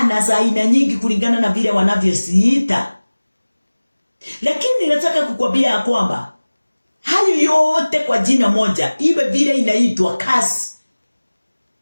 za aina nyingi kulingana na vile wanavyosiita. Lakini nataka kukwambia kwamba hayo yote kwa jina moja, iwe vile inaitwa curse,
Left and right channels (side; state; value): both; inverted; correlation -1.00